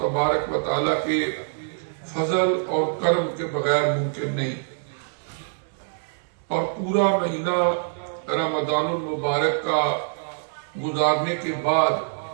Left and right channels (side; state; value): left; silent; 59 dB below the other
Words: و تعالی کے فضل اور کرم کے بغیر ممکن نہیں۔ اور پورا مہینہ رمضان المبارک کا گزارنے کے بعد